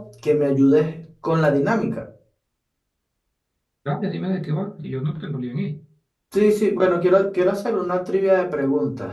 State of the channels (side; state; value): both; identical; correlation 1.00